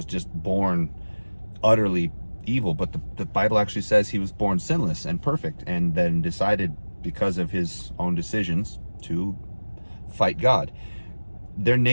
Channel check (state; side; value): inverted; both; correlation -1.00